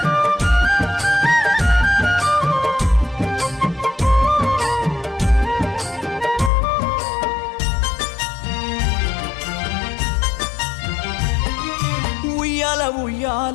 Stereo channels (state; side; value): drops out; right; at 6.5 s